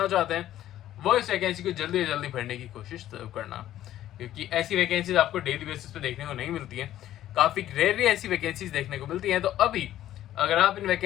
चाहते हैं वो इस वैकेंसी को जल्दी से जल्दी भरने की कोशिश करना, क्योंकि ऐसी वैकेंसीज आपको डेली बेसिस पे देखने को नहीं मिलती हैं। काफी रेयरली ऐसी वैकेंसीज देखने को मिलती हैं। तो अभी अगर आप इन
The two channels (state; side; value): quieter; right; 12.8 dB